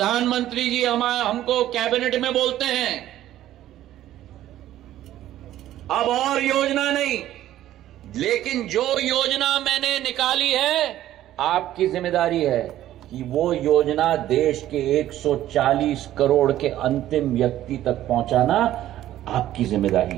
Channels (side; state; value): left; quieter; 13.2 dB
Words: जी हमको कैबिनेट में बोलते हैं अब और योजना नहीं, लेकिन जो योजना मैंने निकाली है, आपकी जिम्मेदारी है कि वो योजना देश के 140 करोड़ के अंतिम व्यक्ति तक पहुंचाना आपकी